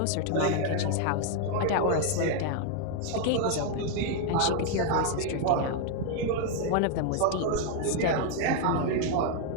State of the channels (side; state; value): both; different; correlation 0.00